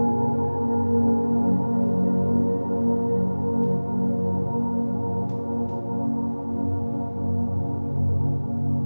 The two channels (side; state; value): both; inverted; correlation -1.00